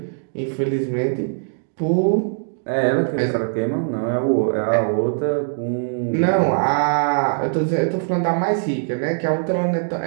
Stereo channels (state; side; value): silent; left; digital silence